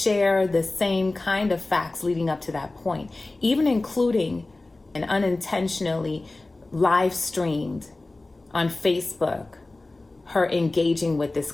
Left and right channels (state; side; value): quieter; right; 3.0 dB